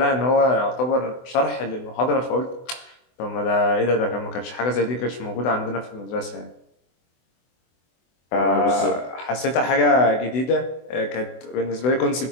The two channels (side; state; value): right; late; 24 ms